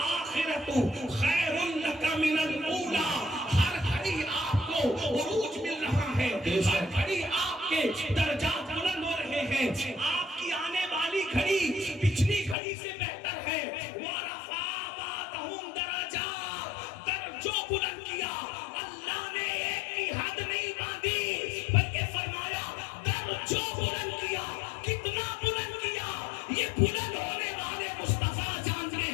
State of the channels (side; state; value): right; drops out; at 12.6 s